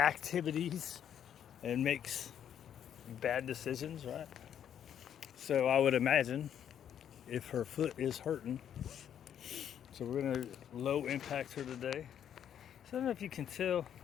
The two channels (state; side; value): quieter; right; 9.4 dB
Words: and makes bad decisions, right? So I would imagine if her foot is hurting, so we're gonna low impact her today. So I don't know if you can tell,